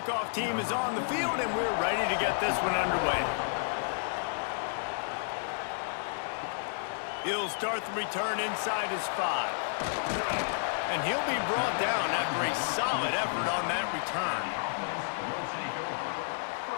team is on the field, and we're ready to get this one underway. He'll start the return inside his 5. And he'll be brought down after a solid effort on that return.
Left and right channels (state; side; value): silent; right; digital silence